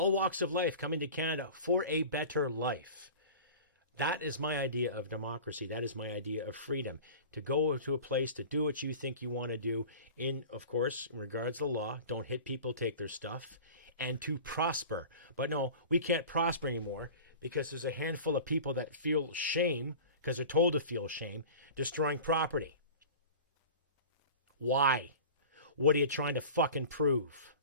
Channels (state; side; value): inverted; both; correlation -0.38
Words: walks of life coming to Canada for a better life. That is my idea of democracy. That is my idea of freedom. To go to a place to do what you think you want to do in, of course, in regards to the law. Don't hit people, take their stuff. And to prosper. But no, we can't prosper anymore because there's a handful of people that feel shame, because they're told to feel shame, destroying property. Why? What are you trying to fucking prove?